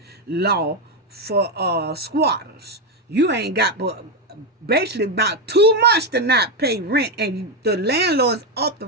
law for squatters. You ain't got but basically about 2 months to not pay rent, and the landlord's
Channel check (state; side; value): normal; both; correlation 0.06